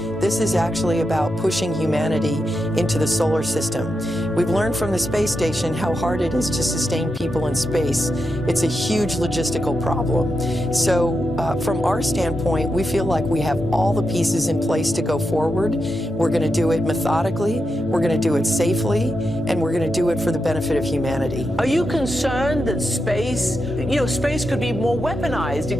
This is actually about pushing humanity into the solar system. We've learned from the space station how hard it is to sustain people in space. It's a huge logistical problem. So from our standpoint, we feel like we have all the pieces in place to go forward. We're going to do it methodically, we're going to do it safely, and we're going to do it for the benefit of humanity. Are you concerned that space, you know, space could be more weaponized?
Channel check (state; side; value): normal; both; correlation 0.87